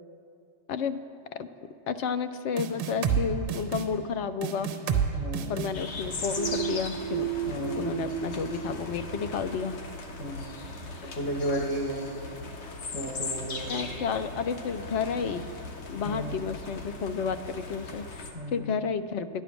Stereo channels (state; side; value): late; right; 3.3 ms